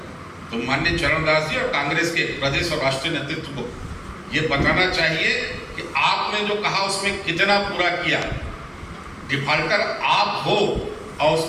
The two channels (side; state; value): both; identical; correlation 1.00